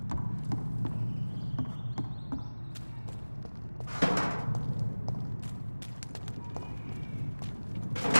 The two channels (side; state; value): both; inverted; correlation -1.00